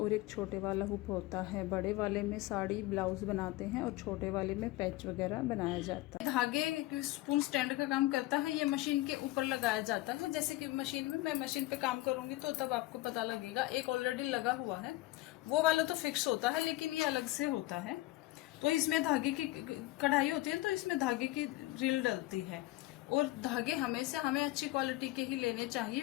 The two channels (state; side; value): quieter; right; 18.0 dB